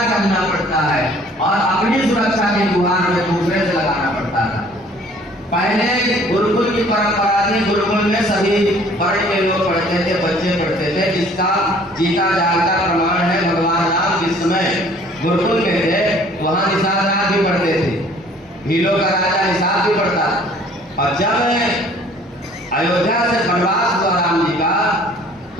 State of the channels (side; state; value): both; normal; correlation 0.55